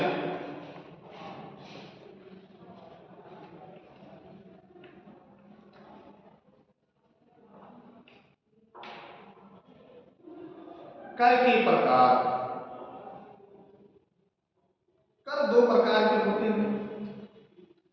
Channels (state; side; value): identical; both; correlation 1.00